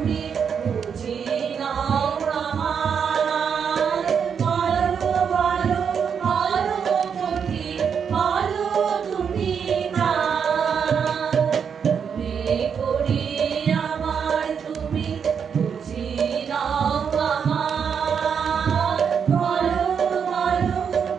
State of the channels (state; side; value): quieter; left; 7.0 dB